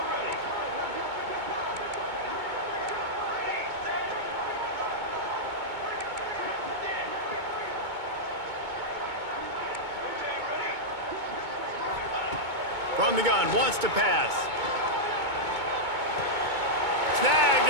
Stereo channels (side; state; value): left; late; 2.2 ms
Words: From the gun, wants to pass. Snagged